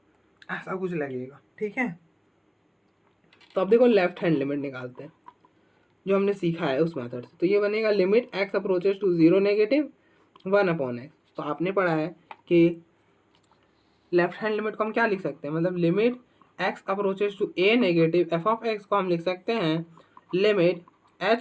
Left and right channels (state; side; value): identical; both; correlation 1.00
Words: ऐसा कुछ लगेगा। ठीक है, तो अब देखो लेफ्ट हैंड लिमिट निकालते हैं जो हमने सीखा है उस मेथड से। तो ये बनेगा limit x approaches to zero negative 1/x। तो आपने पढ़ा है कि लेफ्ट हैंड लिमिट को हम क्या लिख सकते हैं, मतलब limit x approaches to a negative f of x को हम लिख सकते हैं limit